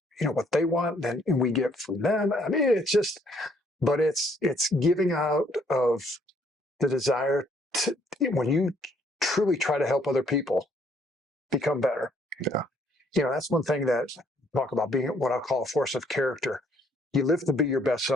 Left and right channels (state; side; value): normal; both; correlation 0.66